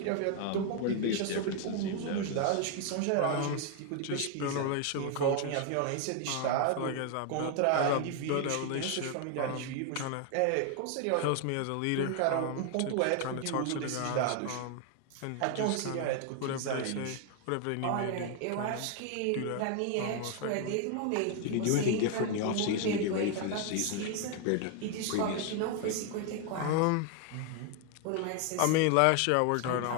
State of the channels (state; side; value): different; both; correlation 0.00